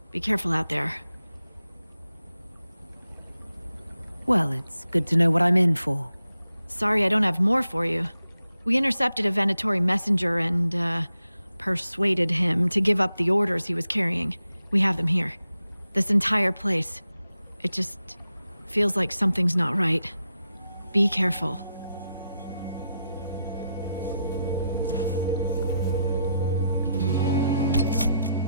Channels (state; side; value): inverted; both; correlation -0.85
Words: Be careful out there. Well, it's good to know what I'm in for. Sorry I don't have more for you. We intercepted a Venatori messenger and, persuaded him to give up the orders he was carrying. We have them here. This entire place. It just feels like something's not right. Be careful.